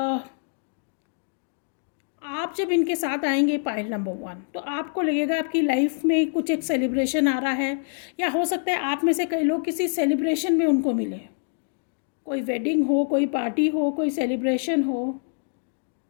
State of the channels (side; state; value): right; silent; digital silence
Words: आप जब इनके साथ आएंगे पाइल नंबर 1, तो आपको लगेगा आपकी लाइफ में कुछ एक सेलिब्रेशन आ रहा है, या हो सकता है आप में से कई लोग किसी सेलिब्रेशन में उनको मिले। कोई वेडिंग हो, कोई पार्टी हो, कोई सेलिब्रेशन हो,